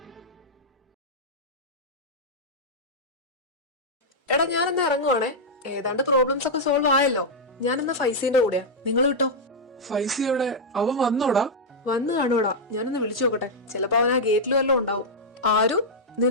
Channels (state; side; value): normal; both; correlation -0.05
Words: എടാ ഞാനെന്നാ ഇറങ്ങുവാണേ. ഏതാണ്ട് പ്രോബ്ലംസ് ഒക്കെ സോൾവ് ആയല്ലോ. ഞാനെന്നാ ഫൈസീന്റെ കൂടെയാ. നിങ്ങൾ കിട്ടോ? ഫൈസി എവിടെ? അവൻ വന്നോടാ? വന്നു കാണൂടാ. ഞാനൊന്ന് വിളിച്ചു നോക്കട്ടെ. ചിലപ്പോ അവൻ ആ ഗേറ്റിൽ വല്ലതും ഉണ്ടാവും. ആരു,